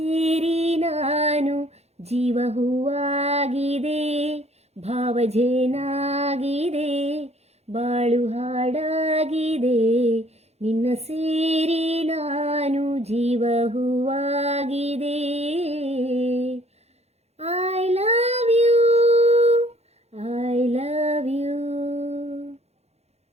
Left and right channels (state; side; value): late; left; 0.31 ms